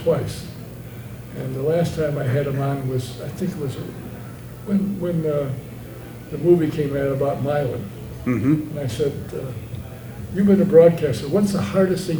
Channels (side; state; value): both; identical; correlation 1.00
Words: And the last time I had him on was, I think it was when the movie came out about Milan. And I said, "You've been a broadcaster. What's the hardest thing